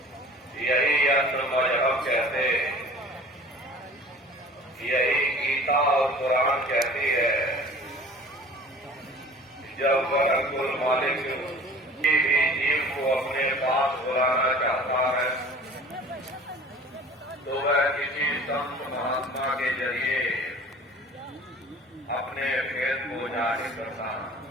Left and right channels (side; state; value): both; normal; correlation 0.44